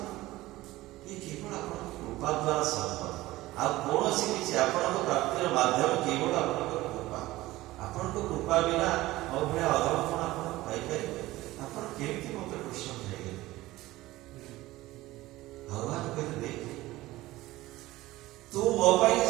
ଇଏ କେବଳ ଆପଣଙ୍କ କୃପା ଦ୍ୱାରା ସମ୍ଭବ, ଆଉ କୌଣସି କିଛି ଆପଣଙ୍କ ପ୍ରାପ୍ତିର ମାଧ୍ୟମ କେବଳ ଆପଣଙ୍କ କୃପା। ଆପଣଙ୍କ କୃପା ବିନା ମୋ ଭଳିଆ ଅଧମ କ'ଣ ଆପଣ ପାଇପାରିବେ? ଆପଣ କେମିତି ମୋ ଉପରେ ପ୍ରସନ୍ନ ହେଇଗଲେ? ଭଗବାନ କହିଲେ ଦେଖ, ତୁ ମୋ ପାଇଁ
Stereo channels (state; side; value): quieter; left; 17.8 dB